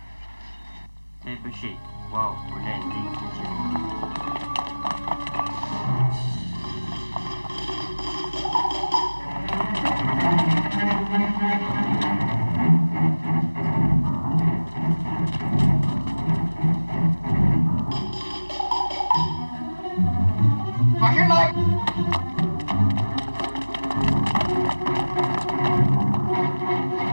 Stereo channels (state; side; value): inverted; both; correlation -1.00